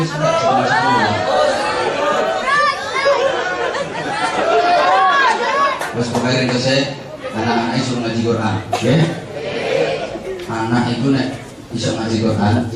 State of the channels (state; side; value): identical; both; correlation 1.00